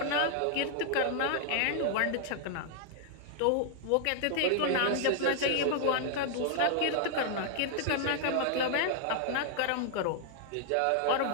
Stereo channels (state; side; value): different; both; correlation -0.01